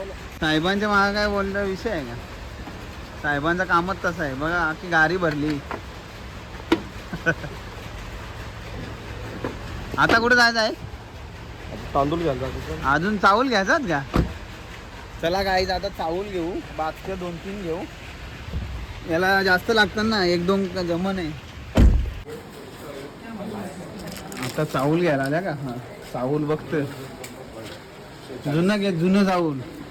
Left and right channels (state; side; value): identical; both; correlation 1.00